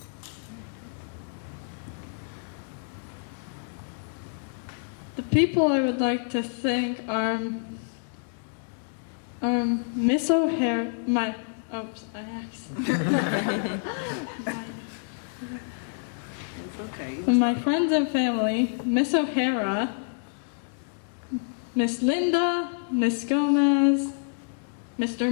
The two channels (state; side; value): silent; right; digital silence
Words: The people I would like to thank are Miss O'Hara, my friends and family, Miss O'Hara, Miss Linda, Miss Gomez, Mr.